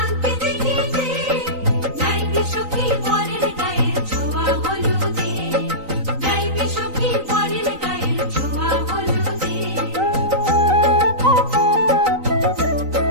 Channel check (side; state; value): left; late; 3.9 ms